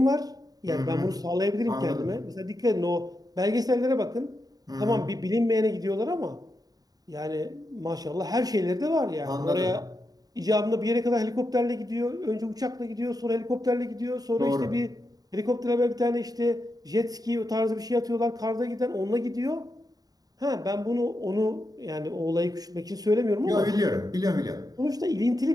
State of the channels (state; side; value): late; left; 0.18 ms